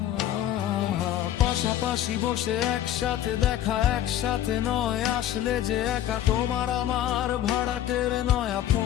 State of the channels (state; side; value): quieter; right; 12.0 dB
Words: আহা। পাশাপাশি বসে একসাথে দেখা, একসাথে নয়, আসলে যে একা তোমার আমার ভাড়াটের নয়া